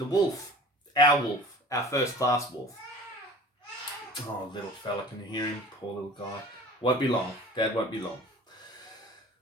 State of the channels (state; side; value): normal; both; correlation 0.43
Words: wolf, our first class wolf. Oh, little fella, can you hear him? Poor little guy. Won't be long. Dad won't be long.